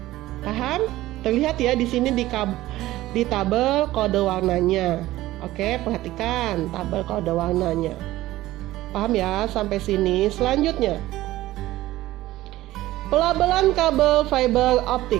Paham? Terlihat ya di sini di tabel kode warnanya. Oke, perhatikan tabel kode warnanya. Paham ya sampai sini? Selanjutnya, pelabelan kabel fiber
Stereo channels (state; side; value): quieter; left; 16.3 dB